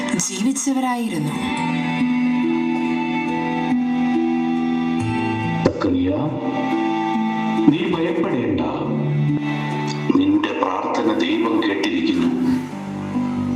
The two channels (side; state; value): both; identical; correlation 1.00